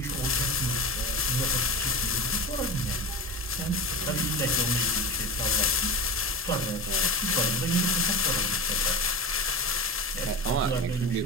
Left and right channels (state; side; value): normal; both; correlation 0.26